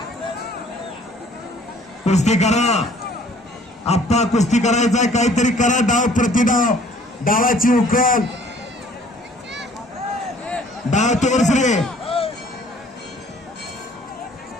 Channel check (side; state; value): both; normal; correlation 0.56